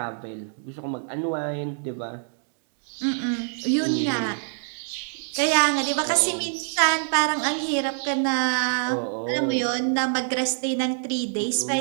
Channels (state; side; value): silent; left; 62 dB below the other